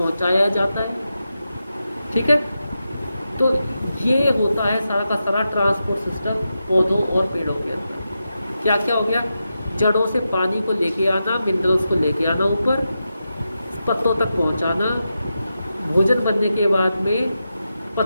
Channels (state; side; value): inverted; both; correlation -0.89